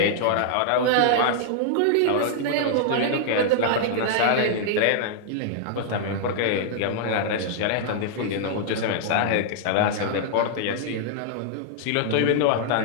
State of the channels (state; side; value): different; both; correlation -0.01